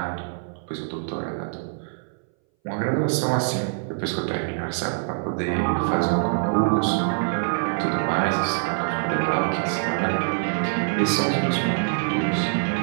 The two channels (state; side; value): silent; left; 60 dB below the other